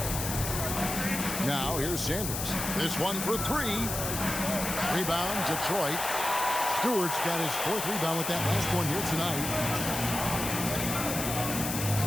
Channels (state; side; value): noise; left; hiss, 4 dB below the sound